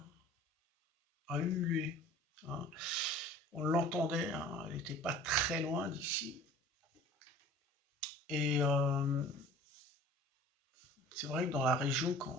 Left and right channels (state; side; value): normal; both; correlation 0.45